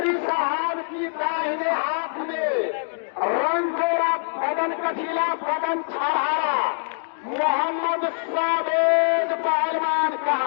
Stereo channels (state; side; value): silent; right; digital silence